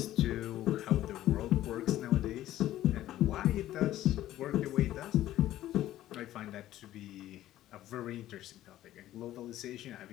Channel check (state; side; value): quieter; right; 13.8 dB